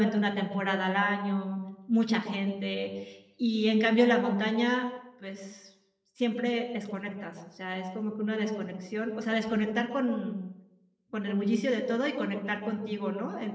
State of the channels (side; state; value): both; identical; correlation 1.00